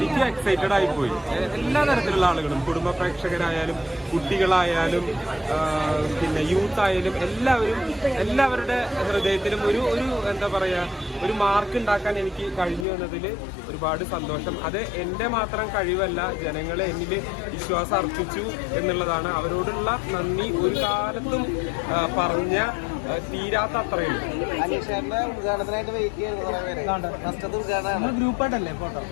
എക്സൈറ്റഡ് ആയിപ്പോയി. എല്ലാ തരത്തിലുള്ള ആളുകളും, കുടുംബ പ്രേക്ഷകരായാലും കുട്ടികളായാലും പിന്നെ യൂത്ത് ആയാലും എല്ലാവരുടെ ഹൃദയത്തിലും ഒരു എന്താ പറയാ, ഒരു മാർക്ക് ഉണ്ടാക്കാൻ എനിക്ക് കഴിഞ്ഞു എന്നതിൽ ഒരുപാട് സന്തോഷം. അത് എൻ്റെ മാത്രം കഴിവല്ല, ജനങ്ങളെ എന്നിൽ വിശ്വാസം അർപ്പിച്ചു എന്നുള്ളതാണ്. അവരോടുള്ള നന്ദി ഒരു കാലത്തും പറഞ്ഞ തീരാത്ത അത്രയും. ഗ്രൂപ്പായിട്ടല്ലേ ഫോട്ടോ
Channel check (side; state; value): right; drops out; at 12.9 s